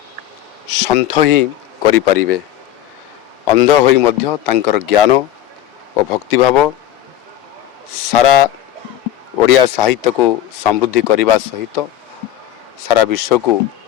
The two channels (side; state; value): right; quieter; 12.2 dB